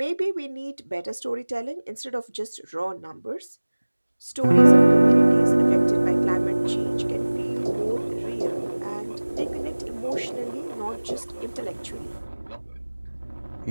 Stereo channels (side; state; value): both; inverted; correlation -1.00